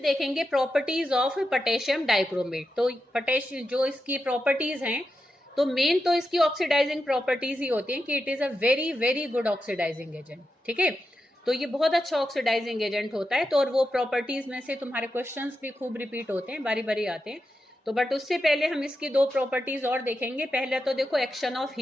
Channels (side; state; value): both; normal; correlation 0.88